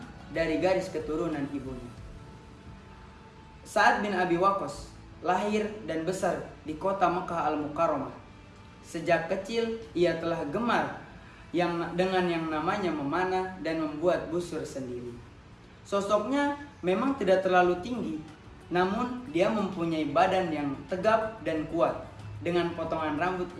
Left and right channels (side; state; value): both; identical; correlation 1.00